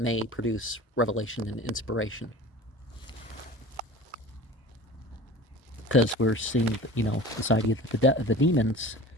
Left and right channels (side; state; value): both; normal; correlation 0.39